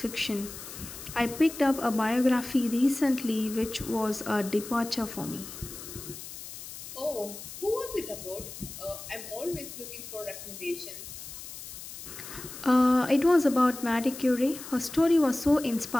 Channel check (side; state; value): left; noise; hiss, 12 dB below the sound